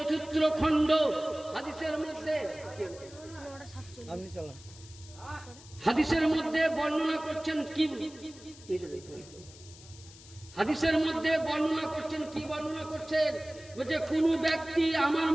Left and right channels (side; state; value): left; noise; hiss, 20 dB below the sound